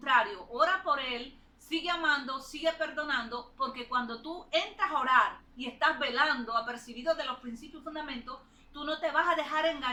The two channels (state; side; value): identical; both; correlation 1.00